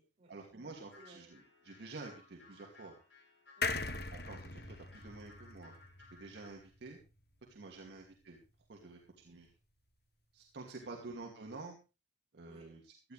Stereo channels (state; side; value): normal; both; correlation 0.36